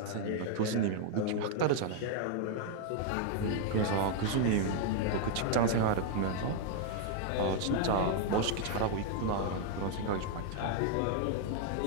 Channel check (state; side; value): different; both; correlation 0.00